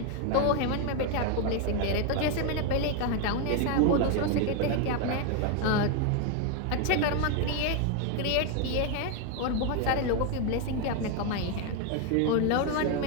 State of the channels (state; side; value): different; both; correlation 0.01